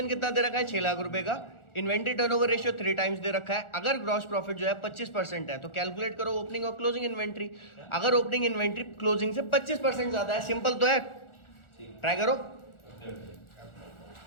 कितना दे रखा है? 6 लाख रुपए का। इन्वेंट्री टर्नओवर रेशियो 3 टाइम्स दे रखा है। अगर ग्रॉस प्रॉफिट जो है 25% है तो कैलकुलेट करो ओपनिंग और क्लोजिंग इन्वेंट्री। अगर ओपनिंग इन्वेंट्री क्लोजिंग से 25% ज्यादा है, सिंपल तो है। ट्राई करो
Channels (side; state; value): right; late; 1.4 ms